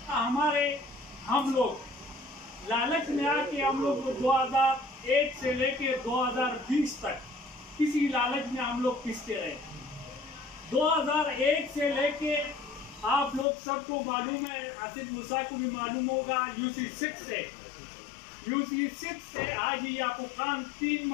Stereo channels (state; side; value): drops out; right; at 13.5 s